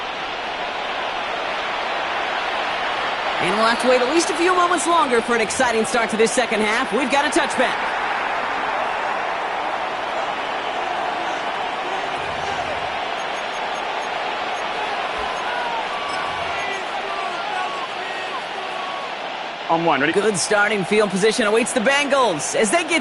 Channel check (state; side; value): identical; both; correlation 1.00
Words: And we'll have to wait at least a few moments longer for an exciting start to this second half. We've got a touchback. On one, ready? Good starting field position awaits the Bengals as they